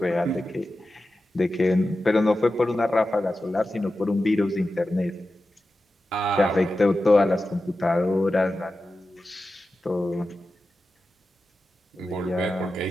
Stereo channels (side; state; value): both; normal; correlation 0.93